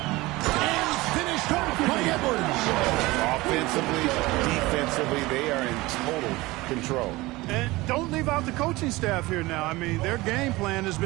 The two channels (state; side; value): quieter; left; 20.6 dB